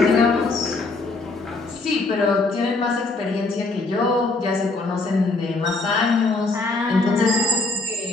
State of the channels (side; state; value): right; quieter; 3.4 dB